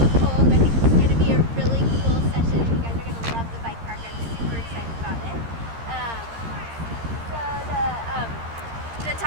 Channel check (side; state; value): left; late; 13 ms